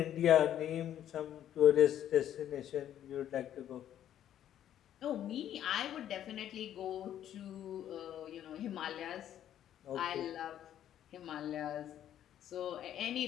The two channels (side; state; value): right; quieter; 11.0 dB